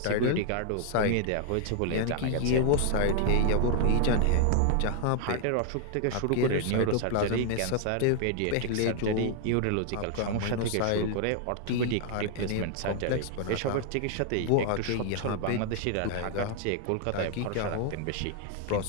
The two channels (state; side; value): different; both; correlation 0.00